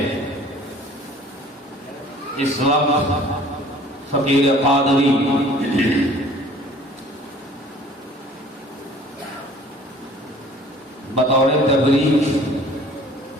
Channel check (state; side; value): normal; both; correlation 0.51